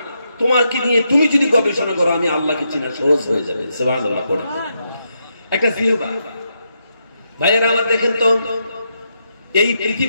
তোমার কি নিয়ে তুমি যদি গবেষণা করো, আমি আল্লাহকে চেনা সহজ হয়ে যাবে। সুবহানাল্লাহ। পড়ে একটা জিহ্বা। ভাইয়েরা আমার, দেখেন তো এই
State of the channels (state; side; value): inverted; both; correlation -0.82